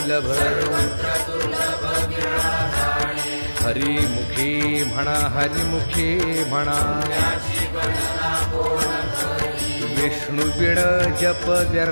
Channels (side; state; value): both; inverted; correlation -1.00